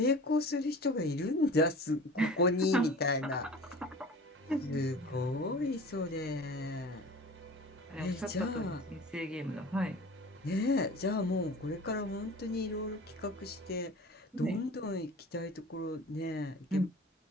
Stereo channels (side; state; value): both; normal; correlation 0.40